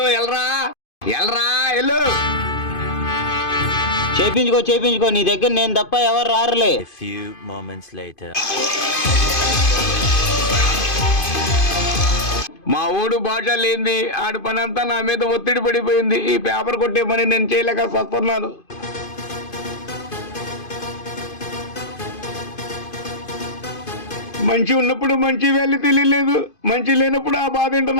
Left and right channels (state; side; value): late; right; 2.5 ms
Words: ఎల్రా ఎల్రా ఎల్లు. చేపించుకో, నీ దగ్గర నేను తప్ప ఎవరు రారులే. A few moments later. మా ఊడు భాష లేంది, ఆడి పని అంతా నా మీద ఒత్తిడి పడిపోయింది. ఈ పేపర్ కొట్టే పని నేను చేయలేక వస్తున్నాను. మంచి ఉన్నప్పుడు మంచి వాల్యూ తెలియలేదు, మంచి లేనప్పుడు ఆ బాధ ఏంటో